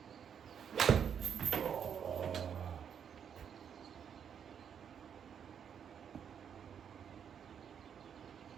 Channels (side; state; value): left; quieter; 8.0 dB